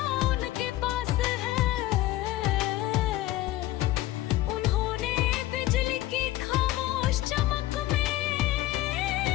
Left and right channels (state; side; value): quieter; right; 16.1 dB